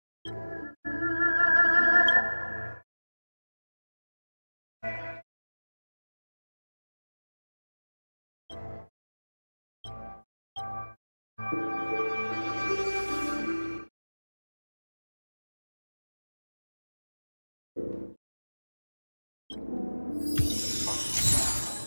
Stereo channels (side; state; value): both; inverted; correlation -1.00